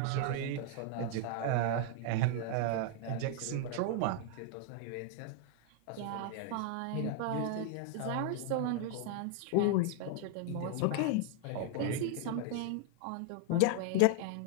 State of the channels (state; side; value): different; both; correlation 0.00